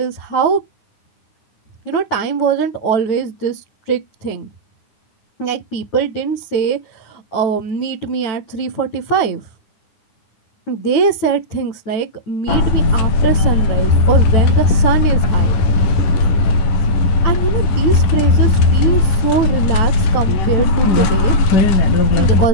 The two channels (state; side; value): late; right; 9.7 ms